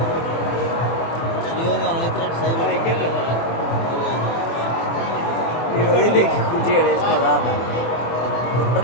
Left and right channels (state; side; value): late; right; 24 ms